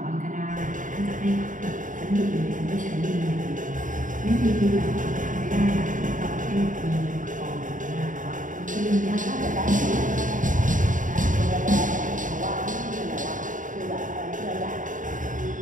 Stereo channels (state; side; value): late; left; 0.38 ms